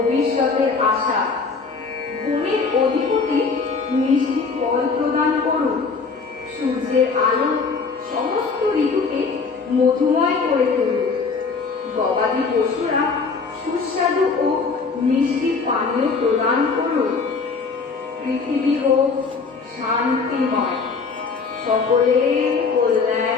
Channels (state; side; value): quieter; right; 4.7 dB